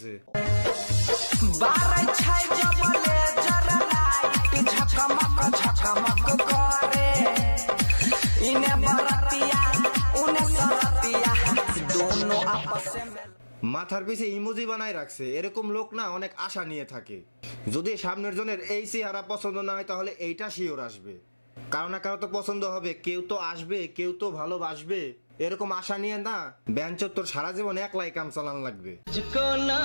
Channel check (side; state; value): both; inverted; correlation -1.00